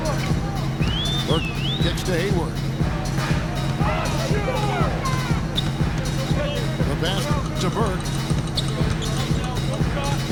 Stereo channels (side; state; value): both; identical; correlation 1.00